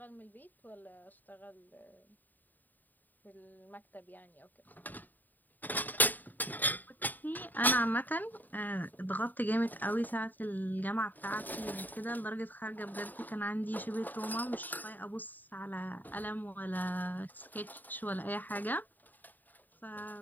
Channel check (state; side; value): late; right; 0.087 ms